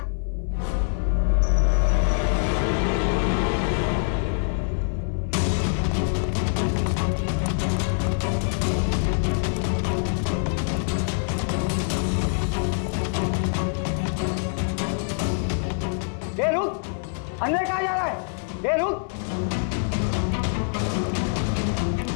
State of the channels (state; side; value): silent; right; 58 dB below the other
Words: ये रुक! अंदर कहाँ जा रहा है? ये रुक!